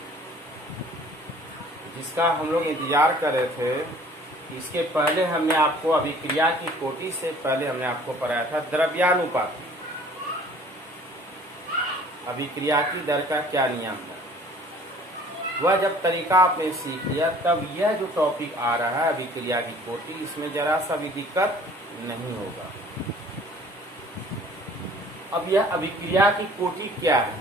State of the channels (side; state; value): both; normal; correlation 0.51